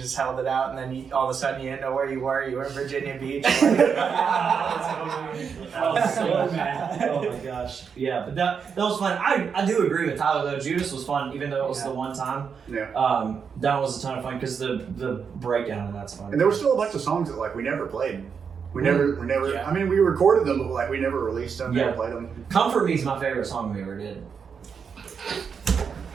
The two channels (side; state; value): left; quieter; 6.4 dB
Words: held it out, and then all of a sudden you didn't know where you were. You were in Virginia Beach. I was so mad. Oh my gosh. Yeah, but that was fun. I do agree with Tyler though. Judas was fun, even though it was the one time. Yeah. That was a ton of fun because the breakdown and that's fun. And there were still a bunch of songs that like we never played. We never. I mean, we recorded them, but like we never released them. Never played them. Comfort Me is my favorite song we ever did.